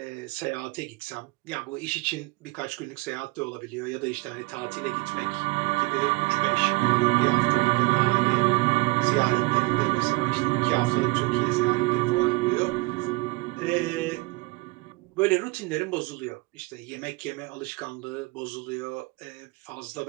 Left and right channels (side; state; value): left; quieter; 23.9 dB